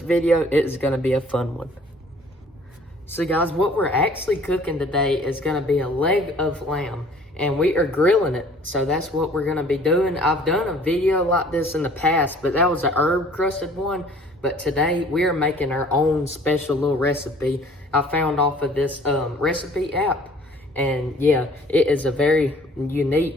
video. It is going to be a fun one. So guys, what we're actually cooking today is going to be a leg of lamb, and we are grilling it. So that's what we're going to be doing. I've done a video like this in the past, but that was a herb crusted one. But today we are making our own special little recipe I found off of this recipe app. And yeah, it is a very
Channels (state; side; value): normal; both; correlation 0.53